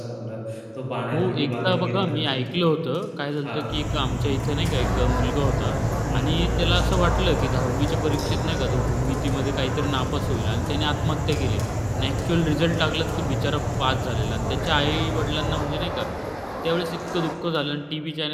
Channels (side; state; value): both; identical; correlation 1.00